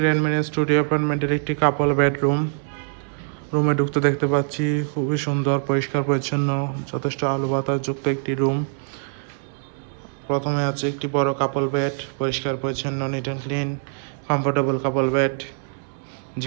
গ্র্যান্ড মেরিন স্টুডিও অ্যাপার্টমেন্টের একটি কাপল বেডরুম। রুমে ঢুকতে দেখতে পাচ্ছি খুবই সুন্দর, পরিষ্কার পরিচ্ছন্ন, যথেষ্ট আলো বাতাস যুক্ত একটি রুম। প্রথমে আছে একটি বড় কাপল বেড, পরিষ্কার পরিচ্ছন্ন, neat and clean, comfortable couple bed,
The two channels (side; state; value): left; silent; 63 dB below the other